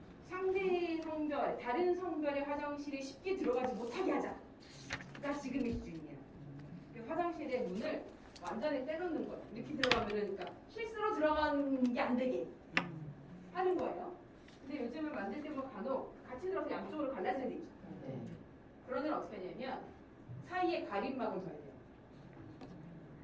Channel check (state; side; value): identical; both; correlation 1.00